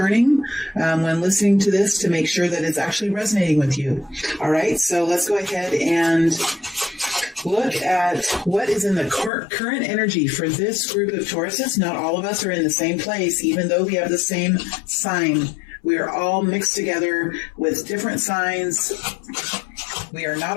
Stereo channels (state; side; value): drops out; right; at 9.3 s